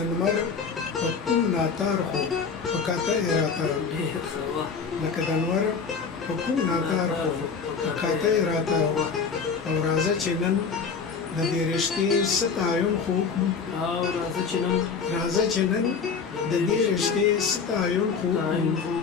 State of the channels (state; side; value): quieter; right; 5.6 dB